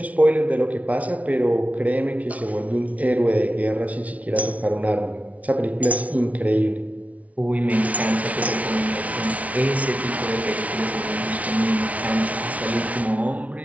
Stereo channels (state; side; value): late; left; 0.068 ms